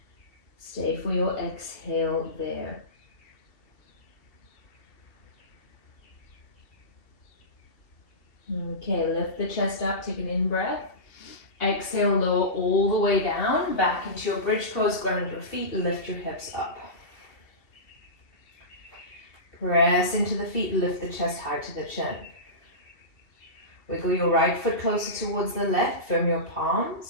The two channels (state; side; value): late; right; 2.7 ms